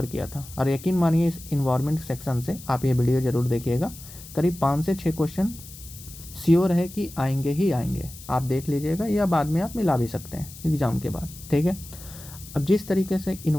किया था, और यकीन मानिए इस इन्वायरमेंट सेक्शन से आप ये वीडियो ज़रूर देखिएगा। करीब 5 से 6 क्वेश्चन श्योर है कि आएंगे ही आएंगे, आप देख लीजिएगा, या बाद में आप मिला भी सकते हैं एग्ज़ाम के बाद। ठीक है, अब जिस तरीके से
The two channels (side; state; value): left; noise; hiss, 16 dB below the sound